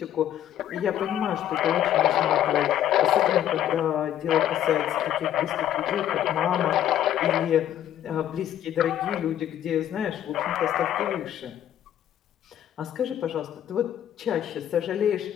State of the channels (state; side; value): quieter; right; 11.2 dB